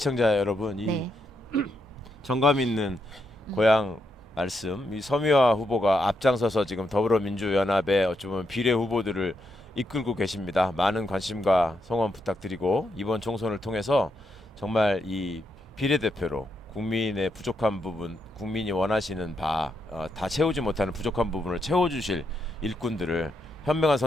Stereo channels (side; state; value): both; normal; correlation 0.81